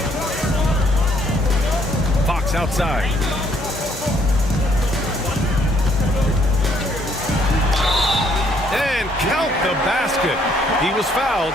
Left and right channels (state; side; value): normal; both; correlation 0.67